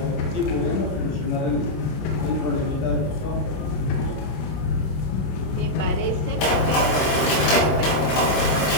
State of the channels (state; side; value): late; right; 22 ms